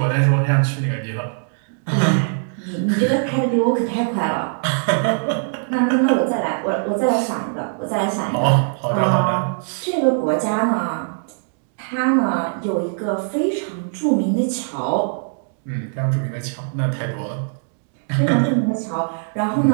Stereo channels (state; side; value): silent; left; digital silence